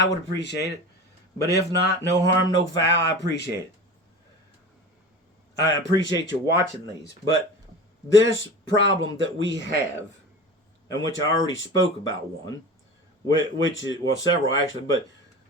would appreciate it. But if not, no harm, no foul, I appreciate it. I appreciate you watching these. But this problem that we have, and which I already spoke about one, which is, well, several actually, but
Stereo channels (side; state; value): both; normal; correlation 0.33